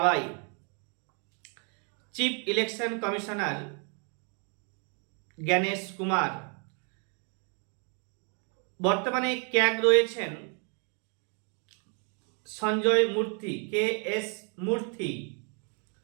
Chief election commissioner Gyanesh Kumar. বর্তমানে ক্যাগ রয়েছেন Sanjay Murthy, K S Murthy.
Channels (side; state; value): left; quieter; 39.7 dB